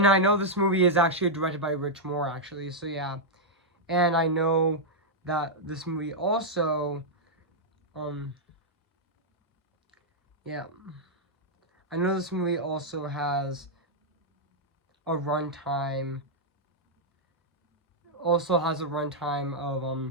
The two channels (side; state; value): both; normal; correlation -0.05